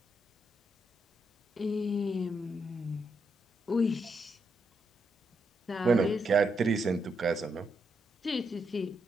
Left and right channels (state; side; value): normal; both; correlation 0.80